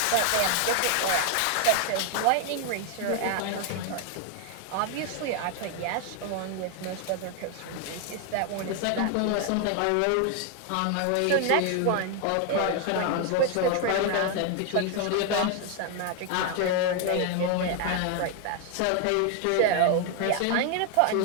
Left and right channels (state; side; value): different; both; correlation 0.01